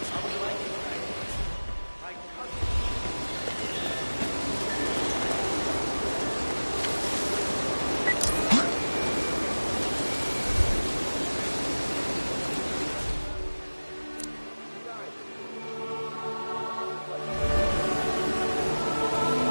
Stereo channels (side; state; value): both; inverted; correlation -1.00